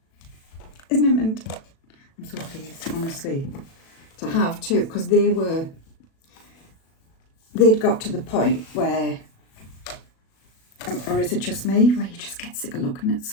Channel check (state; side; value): late; right; 37 ms